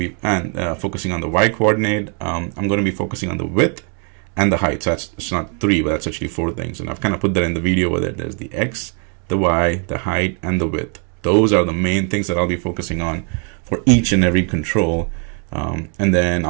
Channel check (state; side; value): quieter; left; 38.9 dB